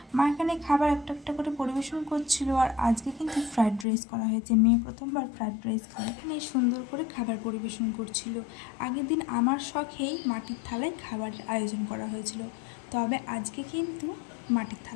মা এখানে খাবার একটা একটা করে পরিবেশন করছিল। আর আজকে কিন্তু ফ্রাইড রাইস করা হয়েছে, মেয়ে প্রথমবার ফ্রাইড রাইস খায়। এখানে সুন্দর করে খাবার পরিবেশন করছিল। আগের দিন আমার শখেই মাটির থালায় খাবারের আয়োজন করা হয়েছিল, তবে আজকে কিন্তু মাটির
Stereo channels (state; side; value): drops out; right; at 3.9 s